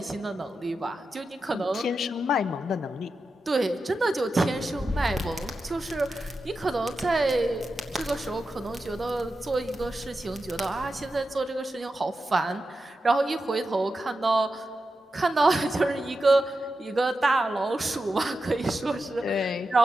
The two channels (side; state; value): both; normal; correlation 0.90